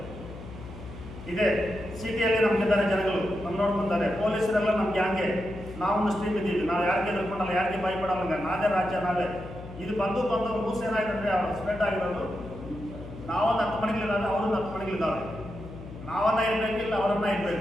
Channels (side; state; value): left; noise; hum, 13 dB below the sound